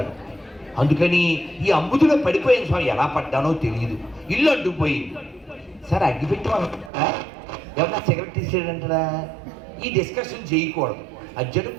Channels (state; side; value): drops out; left; at 6.9 s